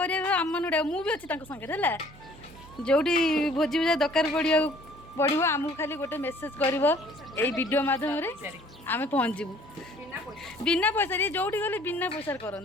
मुझे अच्छी संगे है जोटी भोजी भूजा दरकार पड़ो आमको खाली गोटे मेसेज कर वीडियो मध्यम आम पहुँचू बिना पैसा जोटी गले बिना पैसा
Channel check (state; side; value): normal; both; correlation 0.56